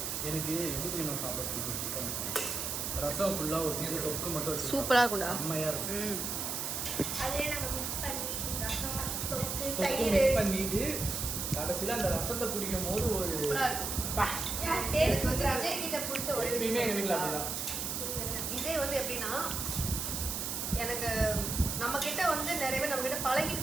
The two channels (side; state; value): right; noise; hiss, 2 dB below the sound